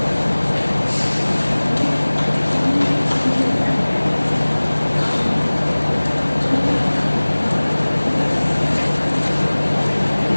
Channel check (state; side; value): inverted; both; correlation -1.00